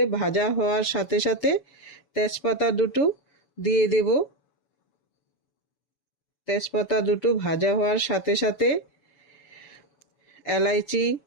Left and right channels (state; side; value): late; right; 7.1 ms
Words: ভাজা হওয়ার সাথে সাথে তেজপাতা 2টো দিয়ে দেব। তেজপাতা 2টো ভাজা হওয়ার সাথে সাথে এলাইচি